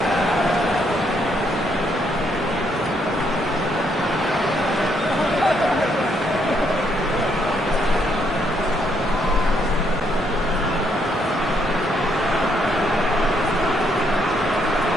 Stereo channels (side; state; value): both; normal; correlation 0.73